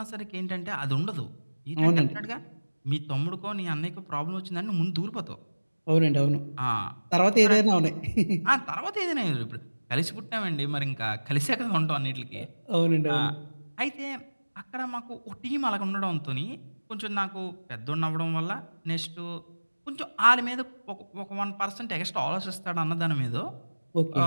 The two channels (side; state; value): both; inverted; correlation -1.00